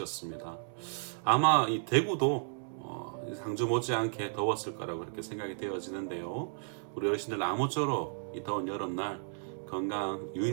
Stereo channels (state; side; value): silent; left; 55 dB below the other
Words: 아마 이 대구도 상주 못지않게 더웠을 거라고 그렇게 생각이 되어지는데요. 우리 어르신들 아무쪼록 이 더운 여름날 건강